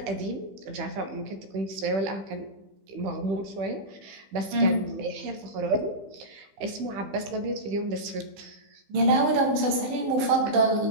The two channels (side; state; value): left; late; 15 ms